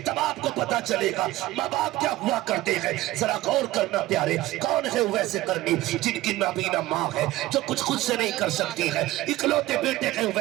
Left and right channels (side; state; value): left; quieter; 16.9 dB